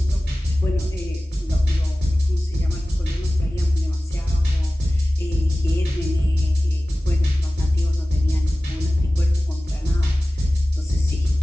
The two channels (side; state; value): both; normal; correlation 0.97